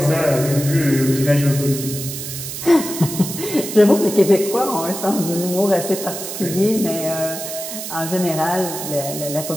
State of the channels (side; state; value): right; noise; hiss, 8 dB below the sound